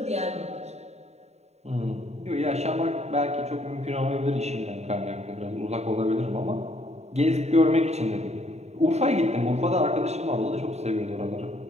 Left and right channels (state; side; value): late; left; 0.32 ms